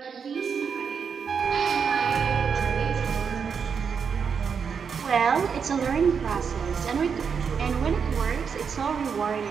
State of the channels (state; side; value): quieter; left; 6.4 dB